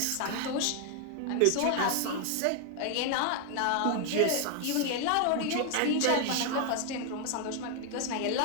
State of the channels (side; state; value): both; different; correlation 0.00